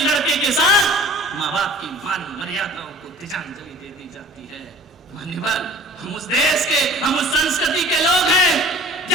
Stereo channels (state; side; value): normal; both; correlation 0.46